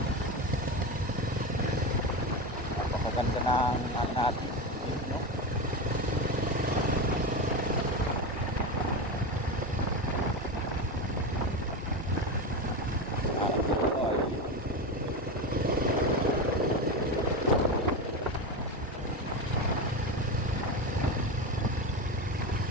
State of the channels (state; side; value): normal; both; correlation 0.19